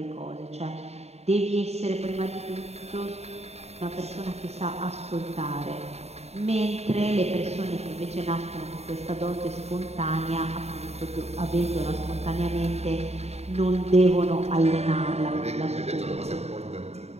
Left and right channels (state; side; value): late; left; 0.31 ms